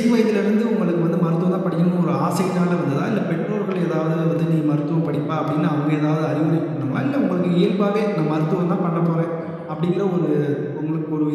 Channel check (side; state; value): both; identical; correlation 1.00